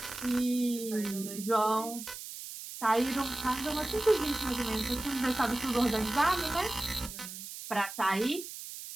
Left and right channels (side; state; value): right; noise; hiss, 10 dB below the sound